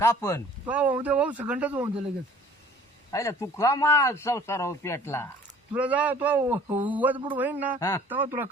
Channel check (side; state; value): both; normal; correlation 0.52